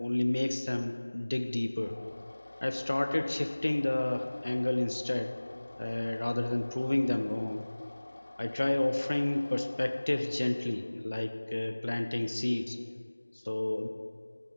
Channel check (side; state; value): both; inverted; correlation -1.00